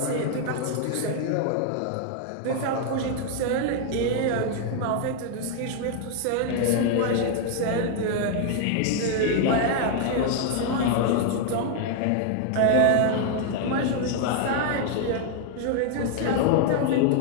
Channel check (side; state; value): both; different; correlation 0.00